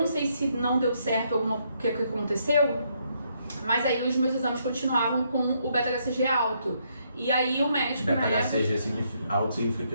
sei se não deu certo o que aconteceu, mas aí os meus exames continuavam com o beta-HCG alto. E aí o médico, beta-HCG alto significa que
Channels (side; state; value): both; inverted; correlation -0.74